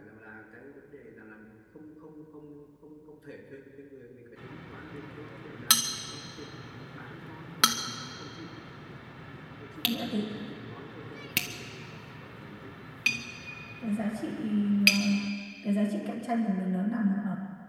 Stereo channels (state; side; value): identical; both; correlation 1.00